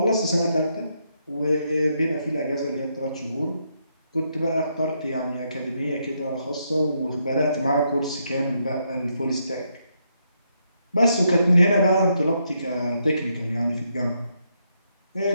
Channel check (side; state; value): both; inverted; correlation -0.78